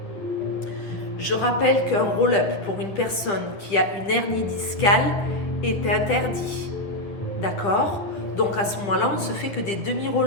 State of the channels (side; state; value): right; late; 9.9 ms